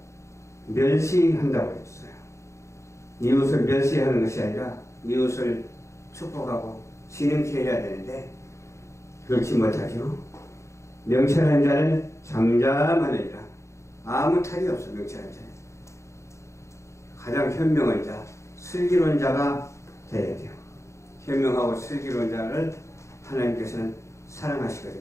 멸시한다고 했어요. 이웃을 멸시하는 것이 아니라 이웃을 축복하고 지능케 해야 되는데 그렇지 못하죠. 명철한 자는 잠잠하느니라. 아무 탈이 없어. 명철한 자는 가장 현명한 자, 슬기로운 자가 되어야 돼요. 현명하고 슬기로운 자를 하나님께서는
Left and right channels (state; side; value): late; right; 0.14 ms